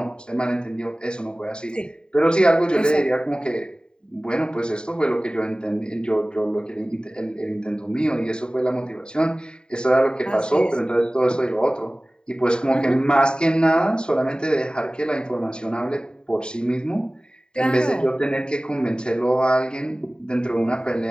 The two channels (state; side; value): late; right; 0.048 ms